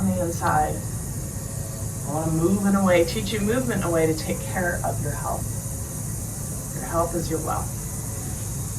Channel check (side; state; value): both; identical; correlation 1.00